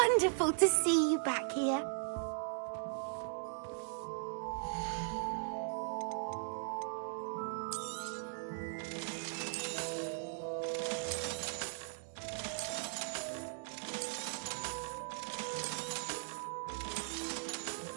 to see you back here.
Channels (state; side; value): silent; left; digital silence